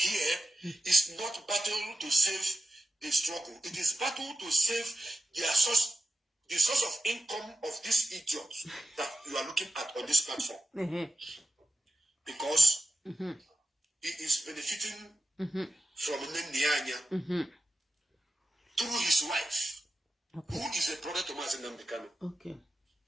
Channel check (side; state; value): both; normal; correlation 0.92